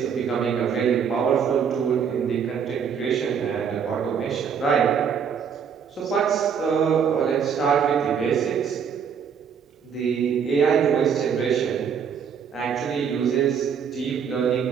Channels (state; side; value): quieter; left; 7.1 dB